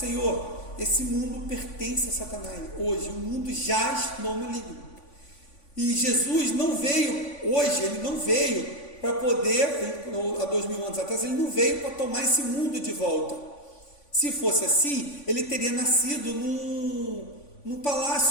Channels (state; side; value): late; right; 3.5 ms